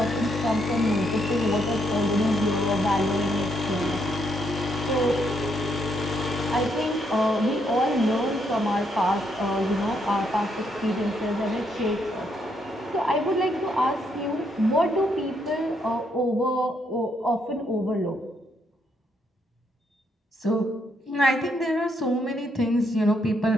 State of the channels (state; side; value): normal; both; correlation 0.75